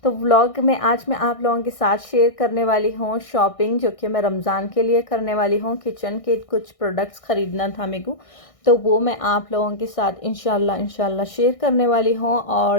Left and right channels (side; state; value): right; late; 1.6 ms